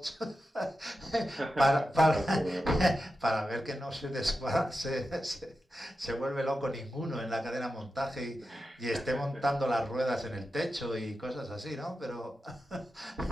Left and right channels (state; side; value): normal; both; correlation 0.90